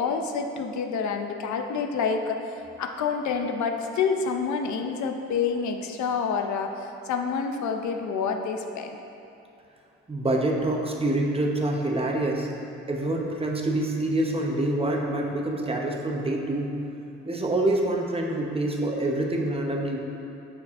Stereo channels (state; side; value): normal; both; correlation 0.38